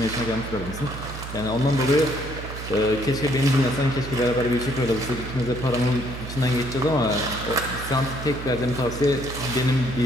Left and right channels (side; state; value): right; noise; hum, 9 dB below the sound